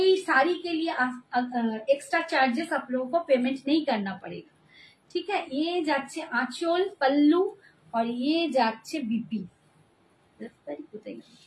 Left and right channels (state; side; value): identical; both; correlation 1.00